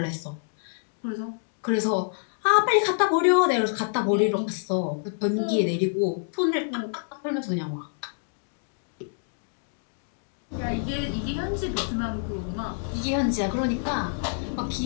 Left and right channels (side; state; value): right; silent; digital silence